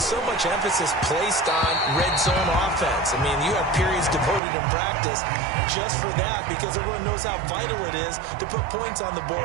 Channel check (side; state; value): left; drops out; at 4.4 s